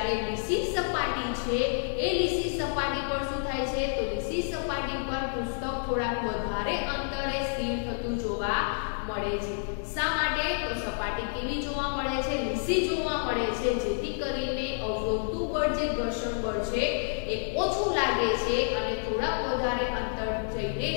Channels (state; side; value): silent; right; digital silence